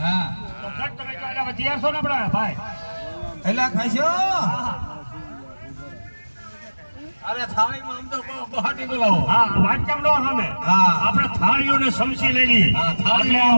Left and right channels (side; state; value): both; inverted; correlation -1.00